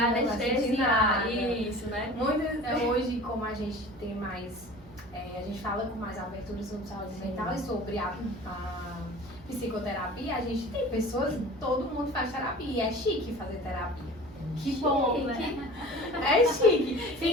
anestesiar. Isso, né? Hoje, como a gente tem mais... a gente fala com mais abertura sobre saúde mental e sobre a psicoterapia, a gente tem pessoas, todo mundo faz terapia, e é chique fazer terapia. Que bom, né? É chique.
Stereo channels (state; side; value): normal; both; correlation 0.40